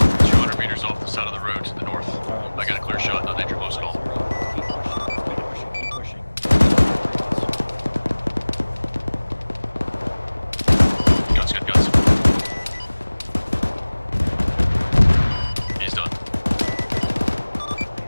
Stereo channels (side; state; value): both; inverted; correlation -1.00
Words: 200 meters off the side of the road to the north. I got a clear shot, no danger, close call. Guns. He's done.